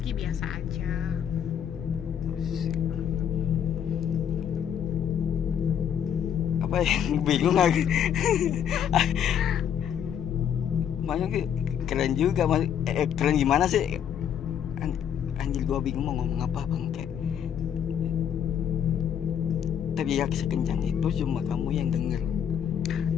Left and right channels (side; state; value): right; quieter; 8.8 dB